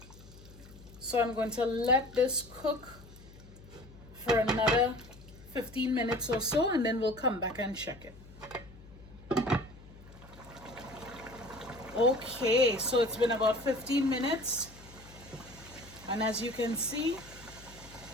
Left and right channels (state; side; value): noise; left; hum, 20 dB below the sound